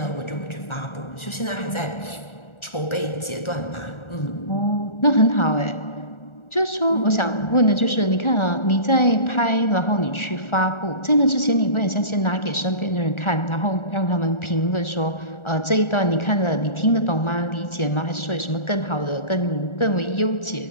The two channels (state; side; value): late; right; 1.4 ms